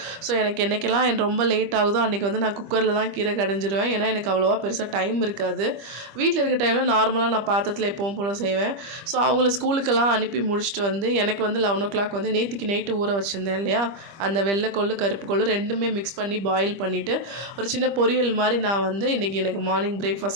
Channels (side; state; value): left; late; 25 ms